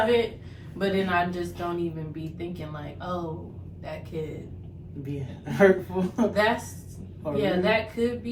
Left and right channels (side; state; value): both; identical; correlation 1.00